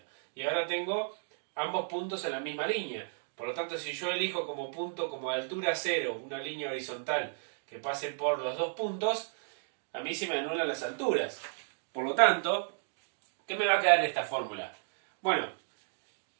Y ahora tengo ambos puntos en la misma línea. Por lo tanto, si yo elijo como punto, como altura cero, una línea horizontal que pase por los dos puntos, a mí se me anulan las alturas. Por lo tanto, ¿qué me va a quedar en esta fórmula? Bueno,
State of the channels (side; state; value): left; silent; digital silence